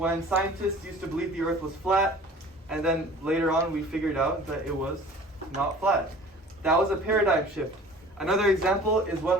scientists used to believe the earth was flat, and then later on we figured out that it was not flat. That was a paradigm shift. Another example is when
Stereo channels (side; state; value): both; normal; correlation 0.45